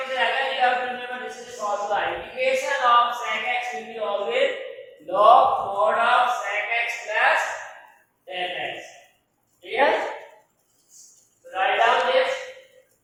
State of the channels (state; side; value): identical; both; correlation 1.00